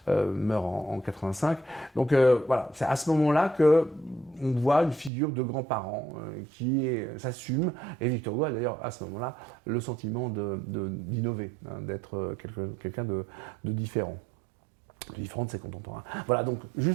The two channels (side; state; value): left; drops out; at 5.1 s